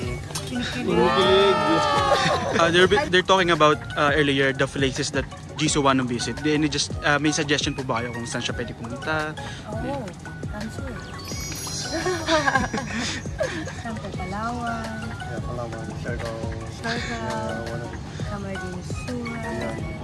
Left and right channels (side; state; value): both; identical; correlation 1.00